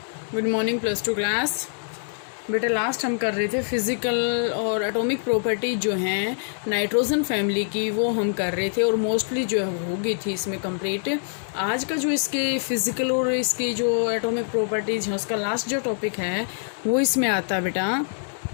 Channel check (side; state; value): right; silent; 62 dB below the other